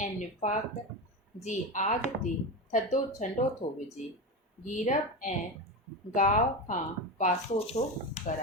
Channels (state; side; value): normal; both; correlation 0.19